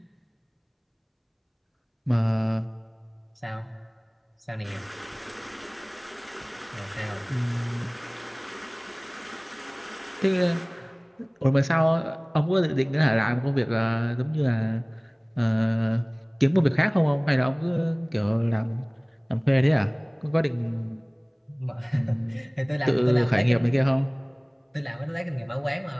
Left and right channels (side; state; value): both; identical; correlation 1.00